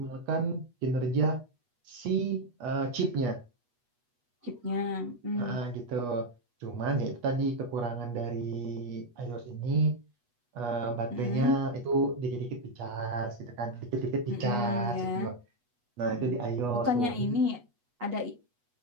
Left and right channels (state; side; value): late; left; 8.3 ms